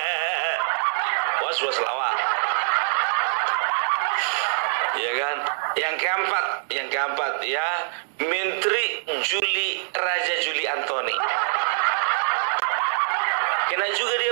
Was-was lawak. Ya kan? Yang keempat ya, Menteri Raja Juli Antoni. Kena juga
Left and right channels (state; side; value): silent; left; 62 dB below the other